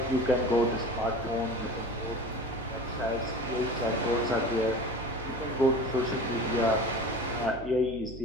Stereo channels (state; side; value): noise; right; hum, 13 dB below the sound